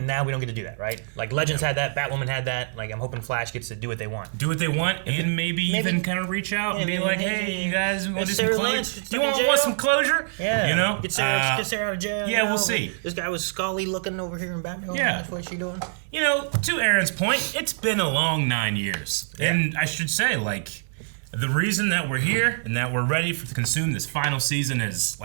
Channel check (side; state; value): left; silent; 62 dB below the other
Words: now we don't get to do that, right? Like, Legends had that, Batwoman had that. Like, I'm hoping Flash gets to do what they want. Do what they want, and maybe even kind of reach out and be like, hey, you guys want to do some closure? Do you want some closure? Yeah. You know? Get Sarah out of jail. Yeah, we'll see. This guy was Scully looking over here in Batman. Yeah. That's what she doing. You know, to Aaron's point, it's been a long 9 years. Yeah. And I should say, like, the reason that we're here and that we're ready to consume this final season is,